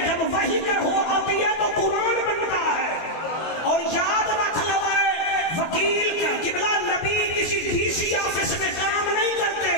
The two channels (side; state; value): right; late; 23 ms